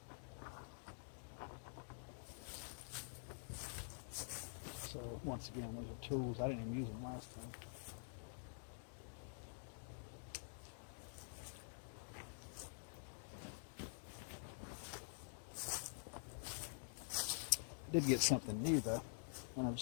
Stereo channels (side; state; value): right; silent; digital silence